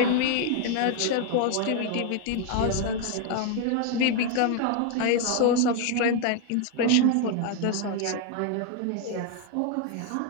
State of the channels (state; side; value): different; both; correlation 0.00